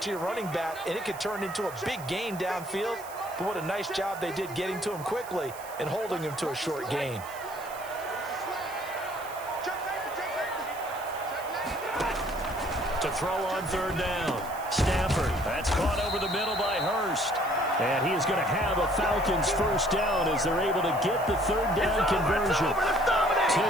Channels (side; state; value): right; noise; hiss, 17 dB below the sound